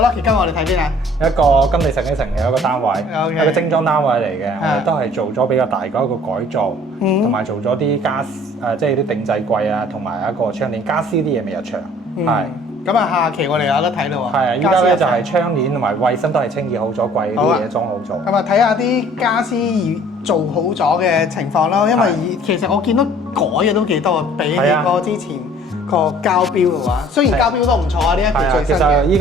Lucky 跟我哋睇邊啊？一個金地城嘅城嘅一個單位， OK 一個精裝單位嚟嘅，我哋都係做咗比較大嘅一個改造，同埋做咗啲即係啲定制櫃啊，同埋一個窗簾家私啲嘢未入場，係。咁啊，下期我哋有得睇咯喎。係啊，依家咧就係窗簾同埋衞生都係清潔好咗，櫃啲嘢裝好咗。咁啊，睇下啲家私做好咗嘅情況咯，因為其實我見到改嘅都幾多，比起個之前個膠標嘅話，雖然膠標都唔錯啊，呢一個最新嘅。其實依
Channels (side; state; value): both; normal; correlation 0.53